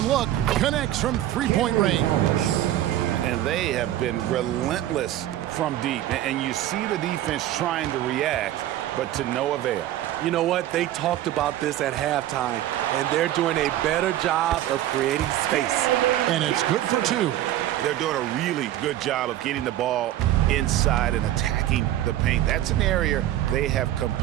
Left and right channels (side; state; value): left; quieter; 13.3 dB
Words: look. Connects from 3-point range. And they have been relentless from deep. And you see the defense trying to react, but to no avail. You know what? They talked about this at halftime, and they're doing a better job of creating space. And it's good for 2. They're doing a really good job of getting the ball inside and attacking the paint. That's an area they have